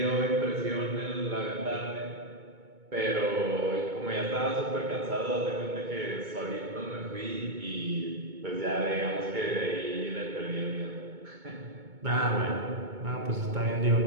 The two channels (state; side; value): late; left; 2.2 ms